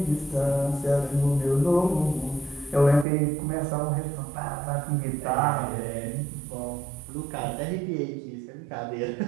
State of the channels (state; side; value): drops out; left; at 3.1 s